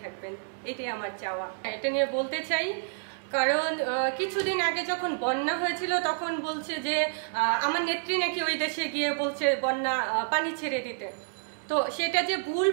থাকবেন, এটাই আমার চাওয়া। এটা নিয়ে বলতে চাই, কারণ কিছুদিন আগে যখন বন্যা হয়েছিল তখন বলছে যে আমার নেত্রী নাকি ওই দেশে গিয়ে বলছে বন্যা পানি ছেড়ে দিতে। তো সেটা যে ভুল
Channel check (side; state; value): left; silent; digital silence